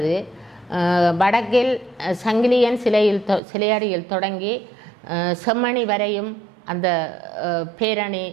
வடக்கில் சங்கிலியன் சிலையடியில் தொடங்கி செம்மணி வரையும் அந்த பேரணி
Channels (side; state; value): left; drops out; at 3.4 s